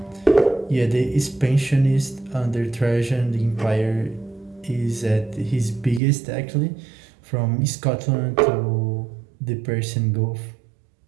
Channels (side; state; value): left; drops out; at 6.0 s